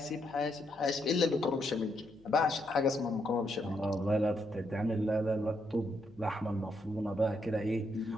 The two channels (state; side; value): noise; left; hum, 27 dB below the sound